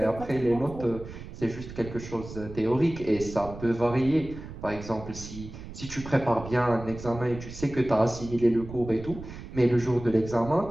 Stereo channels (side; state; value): right; noise; rumble, 12 dB below the sound